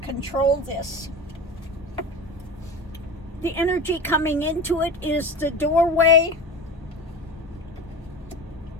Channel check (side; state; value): both; normal; correlation 0.30